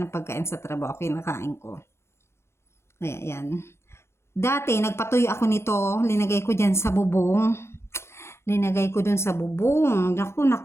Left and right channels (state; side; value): late; right; 0.13 ms